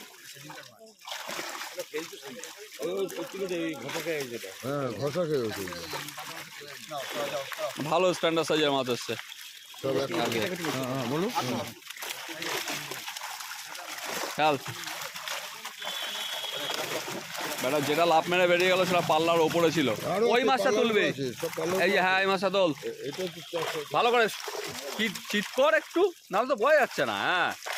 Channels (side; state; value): both; identical; correlation 1.00